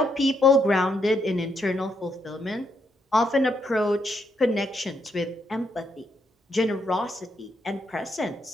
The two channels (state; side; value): normal; both; correlation 0.77